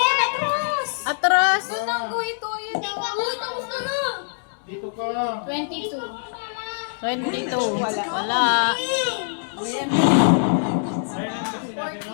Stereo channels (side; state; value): right; silent; digital silence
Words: atras! Atras. Doon ang ito. Yun ang... Uy, tapos na na. Dito ka. 22. 22. Wala. Wala. Ayun lang kasi natin,